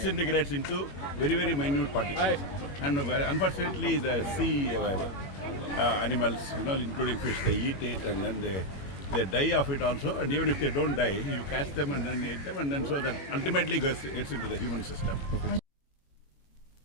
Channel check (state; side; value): late; right; 21 ms